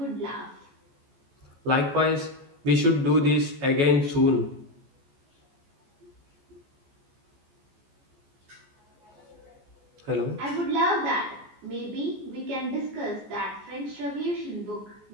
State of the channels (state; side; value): late; left; 14 ms